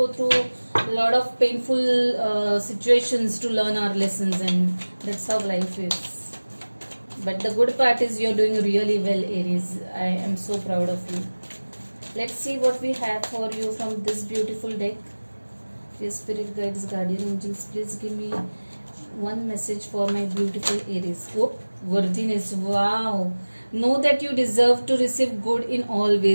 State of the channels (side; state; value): both; inverted; correlation -1.00